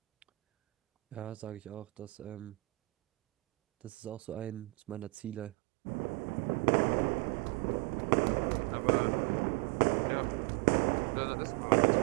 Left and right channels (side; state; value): left; drops out; at 5.5 s